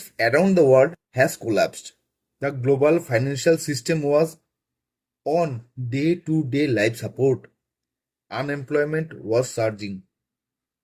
around the world has collapsed. The global financial system was on day-to-day life support. Unemployment was surging.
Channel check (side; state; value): both; identical; correlation 1.00